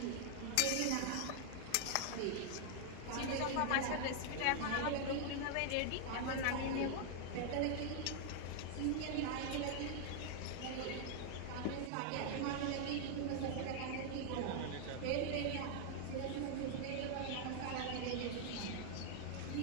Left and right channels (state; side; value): different; both; correlation 0.00